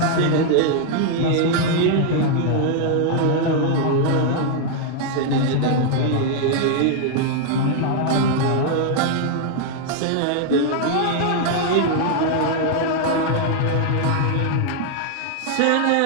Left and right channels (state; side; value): different; both; correlation 0.00